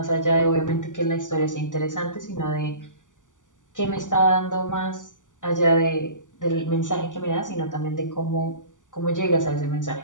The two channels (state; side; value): late; right; 0.87 ms